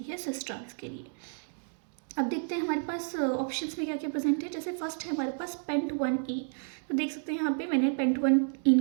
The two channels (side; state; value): left; silent; 57 dB below the other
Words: है सिस ट्रांस के लिए। अब देखते हैं हमारे पास ऑप्शंस में क्या क्या प्रेजेंट है। जैसे फर्स्ट है हमारे पास पेंट 1E। तो देख सकते हैं यहाँ पे मैंने पेंट